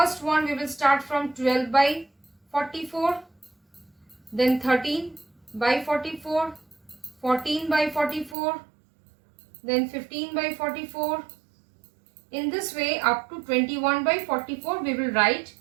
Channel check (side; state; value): left; drops out; at 8.3 s